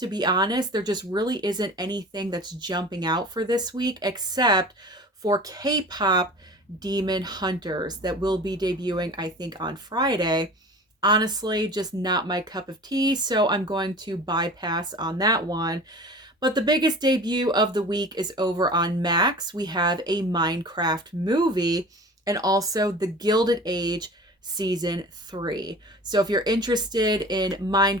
be honest. There just really isn't anything that's jumping out for this week except for K-pop Demon Hunters that will be debuting, I think, on Friday. Honestly, just not my cup of tea, so I'm going to bypass on that one. But the biggest debut of the week is over on Max. We have a Minecraft movie and also The Gilded Age Season 3. So if you're interested in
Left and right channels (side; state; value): both; normal; correlation 0.39